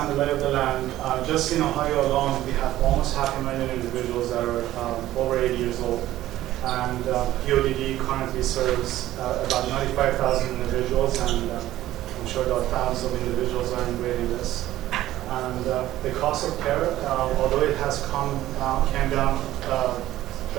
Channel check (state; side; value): quieter; left; 14.5 dB